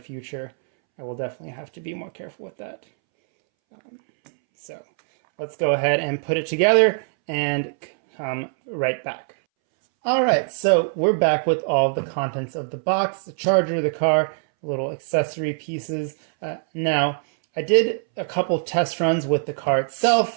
I will definitely have to be more careful with that. So let's go ahead and put it together and come right back. All right, so we're back with all the contents of the box, the charger, the car, little accessory pieces. Now, I did a couple test runs with the car itself,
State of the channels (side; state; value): left; silent; 64 dB below the other